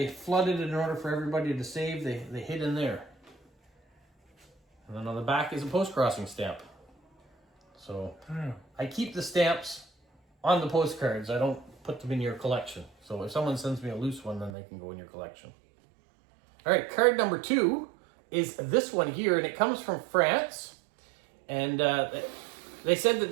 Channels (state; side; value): drops out; left; at 14.5 s